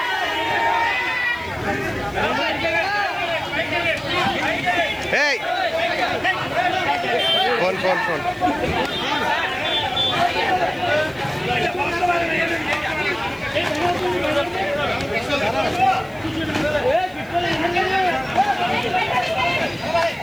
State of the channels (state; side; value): noise; left; hiss, 27 dB below the sound